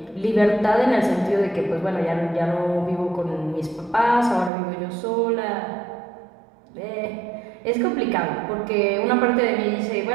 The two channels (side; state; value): left; drops out; at 4.5 s